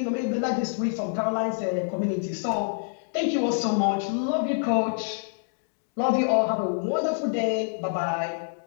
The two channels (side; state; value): right; silent; digital silence